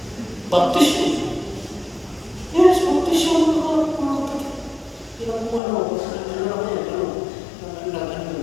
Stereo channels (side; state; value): right; drops out; at 5.6 s